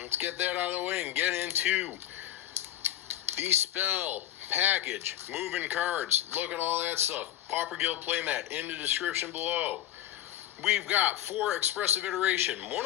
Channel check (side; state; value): right; quieter; 12.3 dB